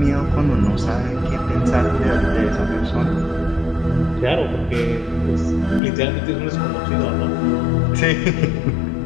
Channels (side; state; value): right; drops out; at 5.8 s